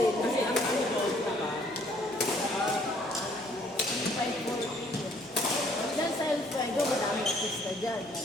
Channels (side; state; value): left; noise; hum, 29 dB below the sound